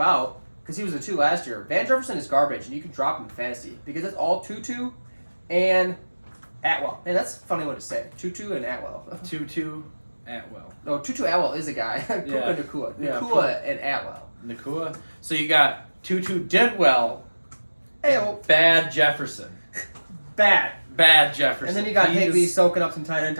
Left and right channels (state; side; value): inverted; both; correlation -1.00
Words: because he was the 2 last year. Van Jefferson is garbage, and you can drop him in fantasy because it's all Tutu and Atwell. Man, that's a funny one to say. Tutu and Atwell. Tutu Atwell. No, Tutu Atwell is a guy. Yeah. Nacua. Yeah, Nacua and Atwell. Nacua. So you got Tutu did well. Bad Jefferson. Bad Jefferson. And then you got Higley soaking up some tight end